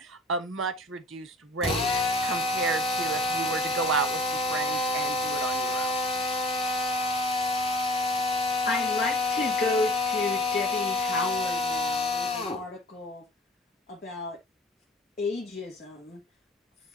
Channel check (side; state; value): both; normal; correlation 0.46